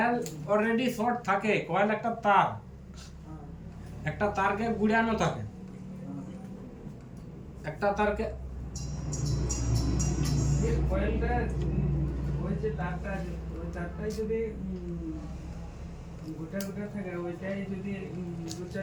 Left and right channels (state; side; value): identical; both; correlation 1.00